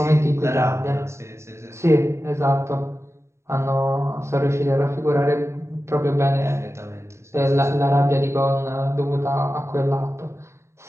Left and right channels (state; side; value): late; left; 0.13 ms